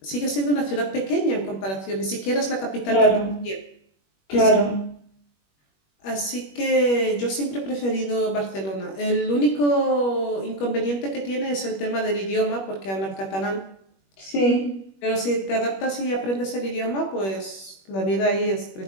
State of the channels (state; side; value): late; right; 21 ms